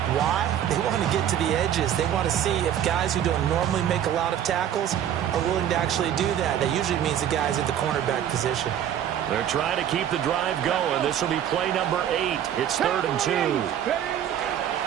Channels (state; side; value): quieter; left; 10.2 dB